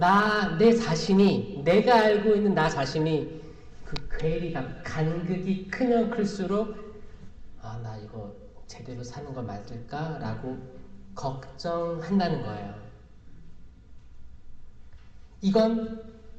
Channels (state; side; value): identical; both; correlation 1.00